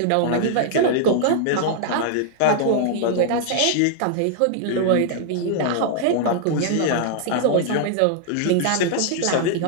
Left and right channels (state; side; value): different; both; correlation -0.01